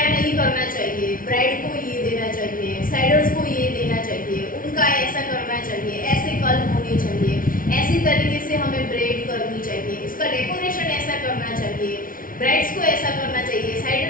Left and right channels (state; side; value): late; right; 0.40 ms